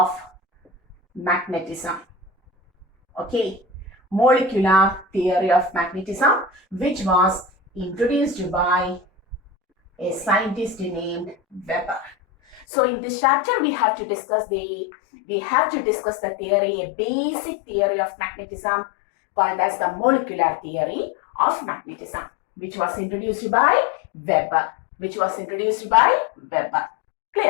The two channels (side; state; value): right; drops out; at 12.7 s